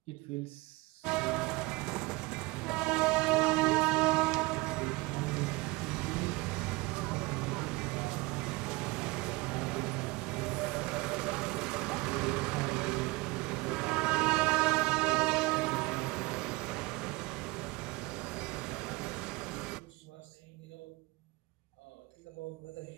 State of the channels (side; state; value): left; quieter; 23.4 dB